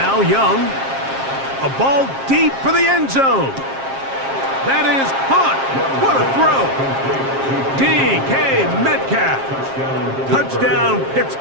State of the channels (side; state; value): left; late; 7.5 ms